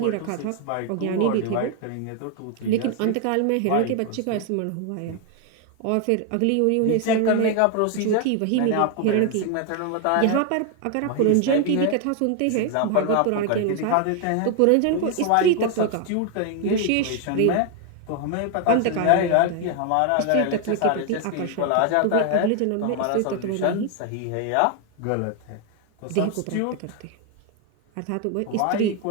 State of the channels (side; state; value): both; different; correlation 0.01